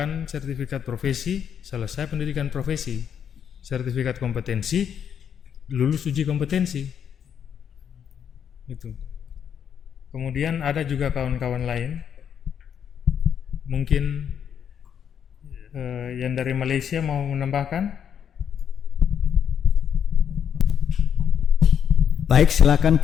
sertifikat profesi, selesai pendidikan profesi, sertifikat kompetensi, lulus uji kompetensi. Itu. Kemudian ada juga kawan-kawan lain, mungkin yang dari Malaysia mau menambahkan? Baik, silakan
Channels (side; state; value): right; quieter; 8.3 dB